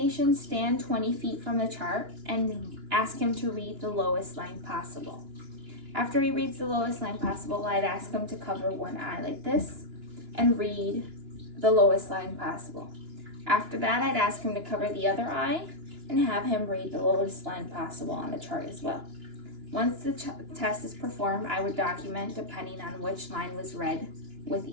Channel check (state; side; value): late; left; 2.9 ms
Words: stand 20 feet from the chart and ask him to read the lowest line possible. After he reads the lowest line possible, I'd ask him to cover one eye like this and read the lowest line possible. After that, I'd ask him to cover the other eye and have him read the lowest line possible on the chart as well. Once the test is performed, I would document depending on which line was read with